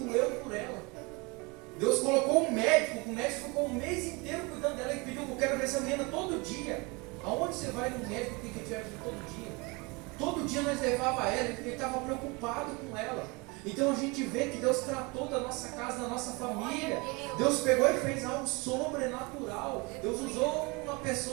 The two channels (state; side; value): quieter; left; 27.4 dB